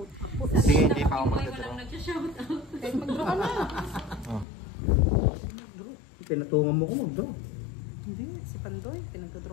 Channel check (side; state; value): right; drops out; at 4.5 s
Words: Sige, hindi pa ako Boy, magdadraw. walang nagsha-shoutout. Kahit mag-draw ka na. Oh. Pinatungan mo ko mag-draw. Hindi, si Pandoy. Pinagdraw